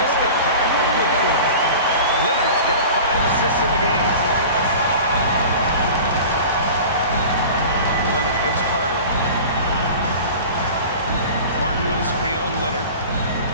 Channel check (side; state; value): both; inverted; correlation -0.38